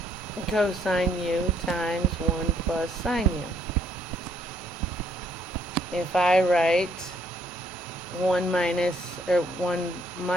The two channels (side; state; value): both; normal; correlation 0.68